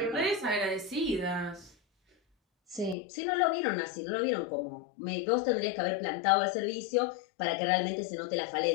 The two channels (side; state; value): right; drops out; at 3.0 s